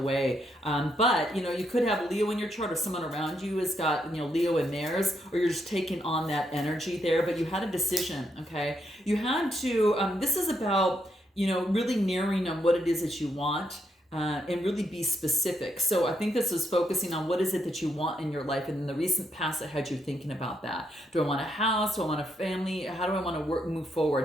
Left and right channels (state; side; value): normal; both; correlation 0.78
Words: way. But you could have Leo in your chart, or someone around you has got Leo in theirs, or you're just taking on that energy there. But you had a decision, okay? You had to. This is about really narrowing on what it is that you want. And really be specific. So I think this is focusing on what is it that you want in your life, and in the recent past that had you thinking about that. Do I want a house? Do I want a family? How do I want to move